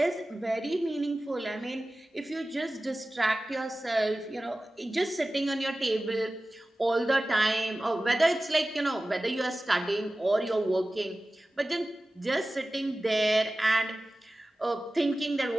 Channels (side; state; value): both; normal; correlation 0.96